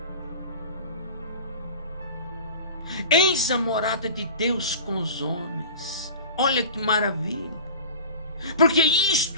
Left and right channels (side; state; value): both; inverted; correlation -0.37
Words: Eis a morada de Deus com os homens. Olha que maravilha. Porque